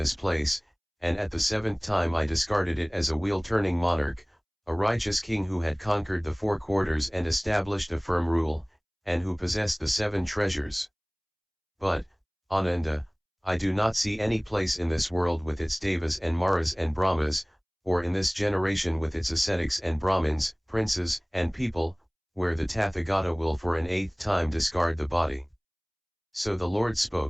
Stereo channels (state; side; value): identical; both; correlation 1.00